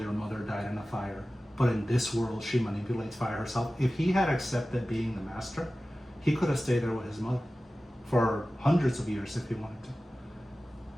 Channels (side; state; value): both; normal; correlation 0.96